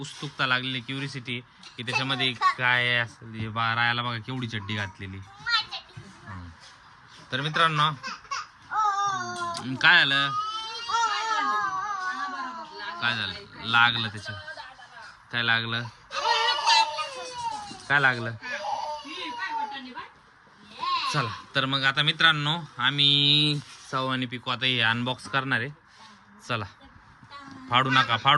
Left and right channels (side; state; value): both; identical; correlation 1.00